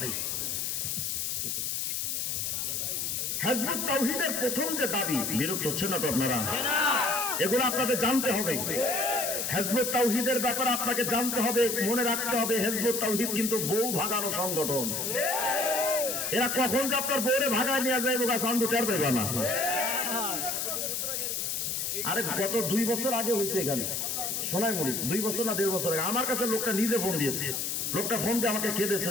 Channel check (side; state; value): left; noise; hiss, 1 dB below the sound